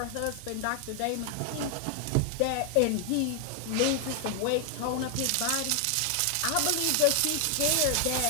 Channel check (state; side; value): different; both; correlation 0.00